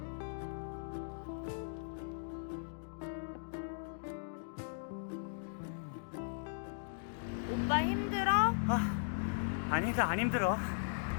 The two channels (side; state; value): right; silent; digital silence